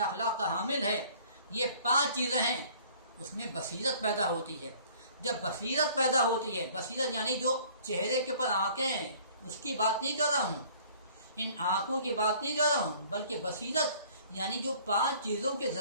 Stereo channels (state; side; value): inverted; both; correlation -0.53